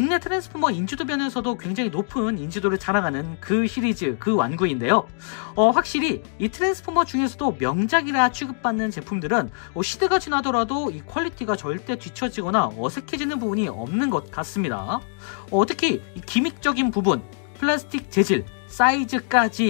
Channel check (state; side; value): silent; right; 63 dB below the other